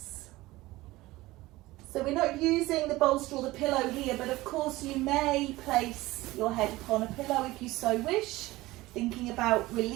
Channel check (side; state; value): left; quieter; 18.9 dB